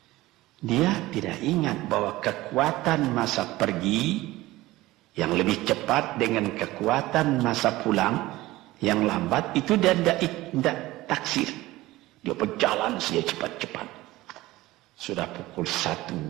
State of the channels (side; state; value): left; quieter; 18.0 dB